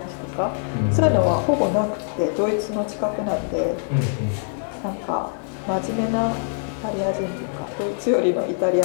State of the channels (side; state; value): right; silent; 62 dB below the other